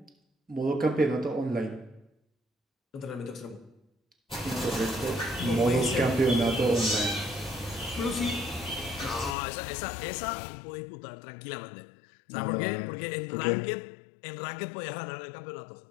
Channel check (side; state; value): right; drops out; at 9.3 s